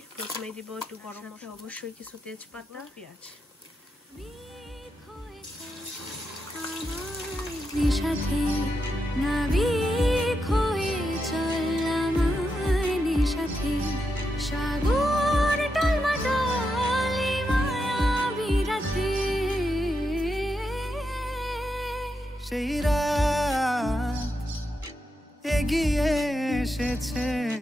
প্রথমেই দিব একটু গরম মশলা, অবশ্যই কিছু তেজপাতা, পেঁয়াজ। সাথে নাবিক হয়ে চললাম সাথে সাগর টলমটলে মায়াবী রাতে, সেই রাত এগিয়ে এসেছে।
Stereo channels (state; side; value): normal; both; correlation 0.85